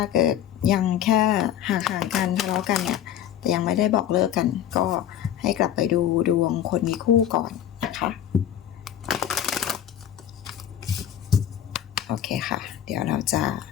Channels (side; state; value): right; quieter; 10.6 dB